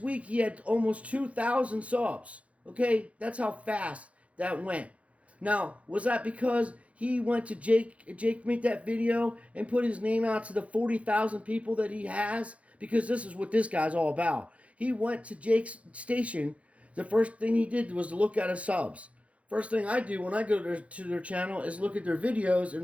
week he had almost 2,000 subs. Okay? That's how fast that went. Now, was that because he went to Jake made that video and put his name out to the 40,000 people that he has? Because this is what this guy's all about. He went to Jake's station. The first thing he did was to look at his subs. First thing I do when I go to their channel is look at their videos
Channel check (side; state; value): left; late; 0.064 ms